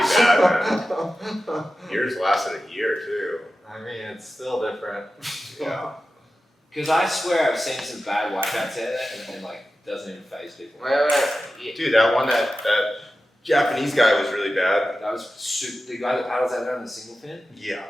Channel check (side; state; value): both; normal; correlation 0.93